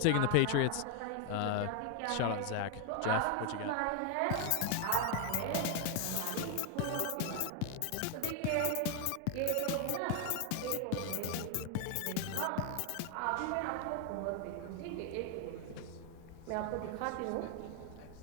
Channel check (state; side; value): different; both; correlation 0.00